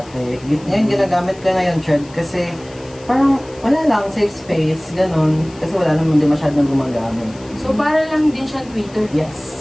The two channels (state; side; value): noise; left; hiss, 24 dB below the sound